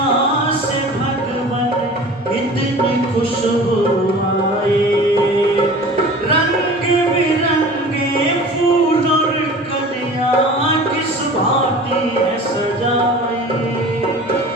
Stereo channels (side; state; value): both; normal; correlation 0.41